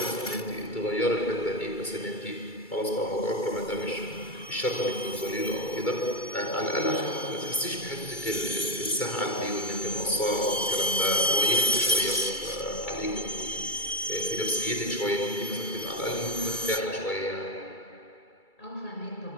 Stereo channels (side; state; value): right; late; 2.3 ms